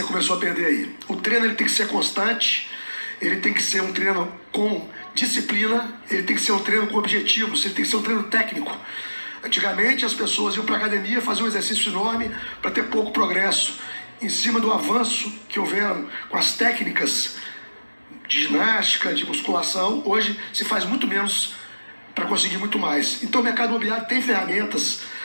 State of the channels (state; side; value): inverted; both; correlation -1.00